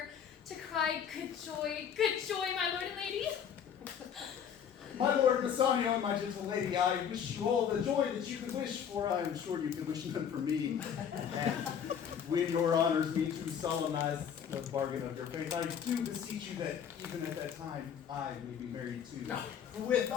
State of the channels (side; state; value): right; quieter; 8.1 dB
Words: to cry good joy, my lord and lady. My lord Bassanio and my gentle lady, I wish you all the joy that you could wish, for I am sure you could wish none for me. And when your honors me to solemnize the bargain of your faith, I do beseech you that even at that time I may be married too. With